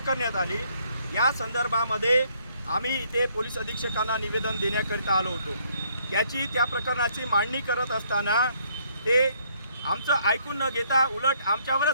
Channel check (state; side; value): inverted; both; correlation -0.67